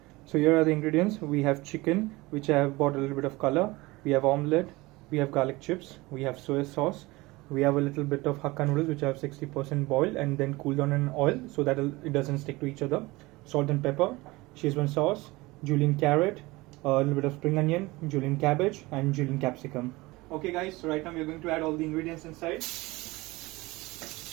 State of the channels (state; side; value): quieter; left; 21.5 dB